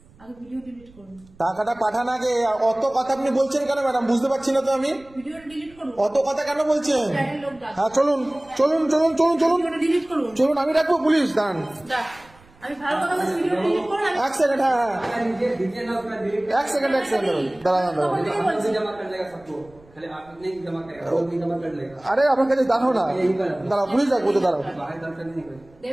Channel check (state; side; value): noise; right; rumble, 27 dB below the sound